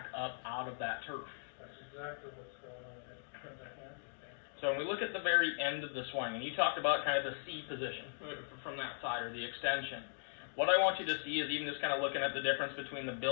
up out of that turf. That's exactly what's going on in the hands. So when we look at the very end of the swing, and you talked about kind of the C position from that side or the extension. What I want you to see is even just kind of looking at the difference between the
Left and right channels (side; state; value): right; silent; digital silence